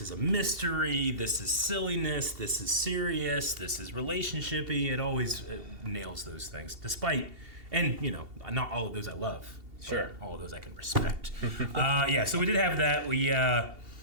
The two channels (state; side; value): late; left; 2.7 ms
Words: is a mystery. This is silliness. This is serious. This is relationshipy. It always nails those things. Despite, and you know, not all of those I love. Sure. All of those I can respect. Yeah. So we did have that. We.